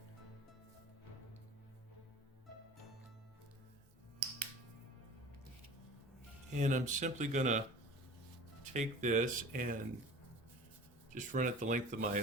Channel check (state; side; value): normal; both; correlation 0.40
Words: And I'm simply gonna take this and just run it the length of my